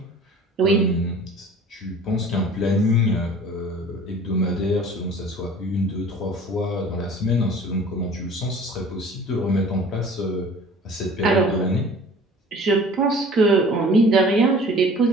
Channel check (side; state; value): both; normal; correlation 0.46